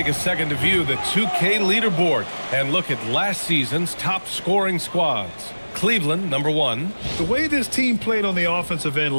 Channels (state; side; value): inverted; both; correlation -1.00